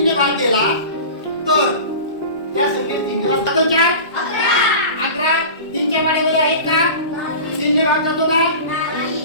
ने भाग गेला तर त्या संख्येत 3 ने भाग जातो. 4 11 3च्या पाड्यामध्ये आहेत का? 3 ने भाग जातो का?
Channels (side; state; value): both; inverted; correlation -0.35